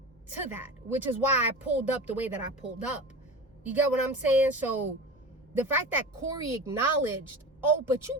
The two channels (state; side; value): normal; both; correlation 0.30